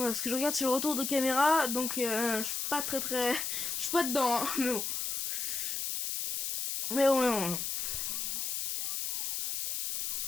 parce que je regarde sur le retour de caméra, donc je suis pas très... Je suis pas dedans, hein, mais bon. Mais bon.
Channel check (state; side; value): noise; left; hiss, 2 dB below the sound